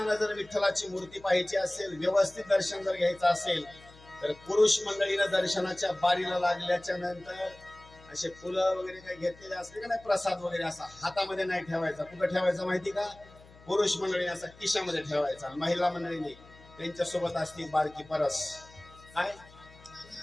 जर विठ्ठलाची मूर्ती पाहायची असेल, व्यवस्थित दर्शन जर घ्यायचं असेल तर पुरुष मंडळीनं दर्शनाच्या बारीला लागल्याच्या नंतर असे फुलं वगैरे काही घेतलेले असले का नाही, प्रसाद वगैरे असा हातामध्ये नाही ठेवायचा. कुठं ठेवायचा माहिती का? पुरुष मंडळीने असा खिशामध्ये ठेवायचा. महिला मंडळीने त्यांच्या सोबत असते बारकी परस. काय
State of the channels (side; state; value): left; noise; hum, 23 dB below the sound